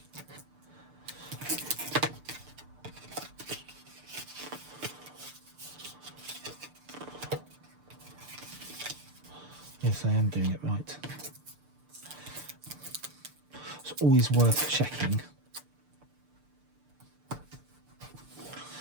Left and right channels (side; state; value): left; late; 6.7 ms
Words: Yes, I am doing it right. It's always worth checking.